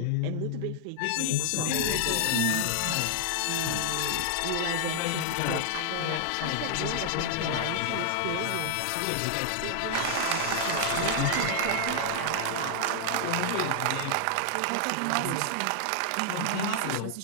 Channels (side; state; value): both; different; correlation 0.00